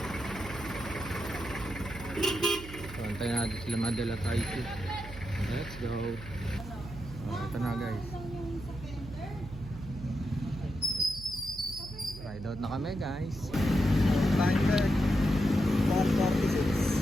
4:26. So antayin natin sila Madel at IC. Let's go. Ito na guys. Ride out na kami guys. Time check 4:46.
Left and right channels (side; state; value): right; noise; hum, 13 dB below the sound